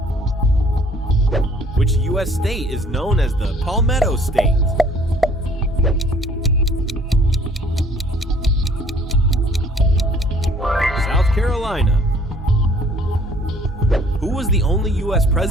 Which U.S. state is known as the Palmetto State? South Carolina. Who was the only U.S.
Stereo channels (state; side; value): normal; both; correlation 0.58